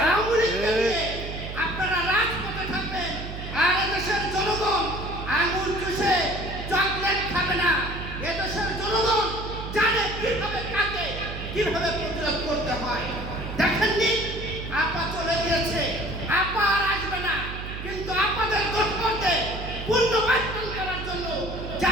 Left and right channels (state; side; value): noise; right; hum, 8 dB below the sound